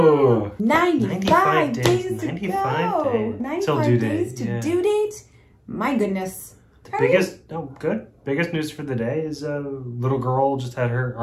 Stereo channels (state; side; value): identical; both; correlation 1.00